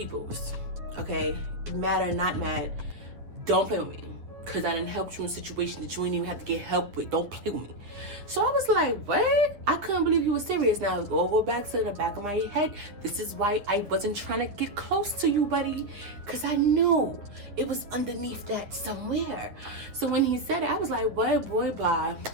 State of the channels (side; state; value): left; late; 9.6 ms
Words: okay? Mad or not mad, don't play with me, because I done helped you in situations that you ain't even have to get help with. Don't play with me. So I was like, what? I couldn't believe you were serious. Now go back to the back of my head. This is why I wasn't trying to get close to you, buddy, because I knew it was underneath that somewhere. So when he said it, I was like, what, boy, bye.